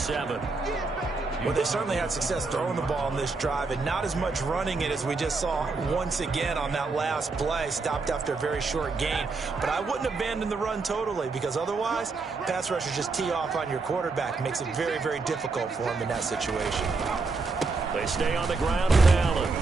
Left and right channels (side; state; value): left; quieter; 4.0 dB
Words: Well, they certainly had success throwing the ball in this drive and not as much running it as we just saw once again on that last play. Stopped after a very short gain. But I wouldn't abandon the run totally because otherwise, pass rushers just tee off on your quarterback. Makes it very, very difficult for him in that situation. They stay on the ground with Allen.